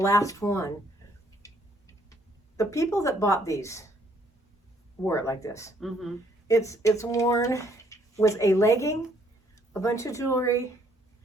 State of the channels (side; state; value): both; normal; correlation 0.66